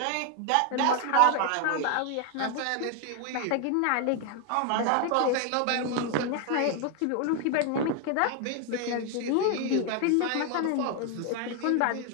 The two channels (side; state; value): both; different; correlation 0.01